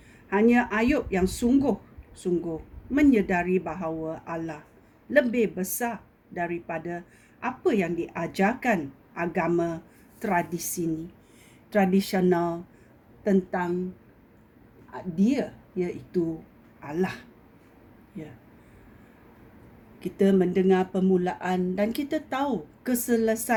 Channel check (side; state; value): both; identical; correlation 1.00